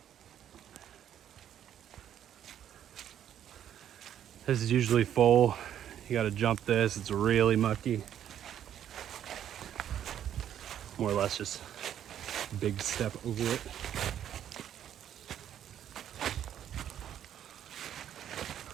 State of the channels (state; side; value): quieter; left; 10.3 dB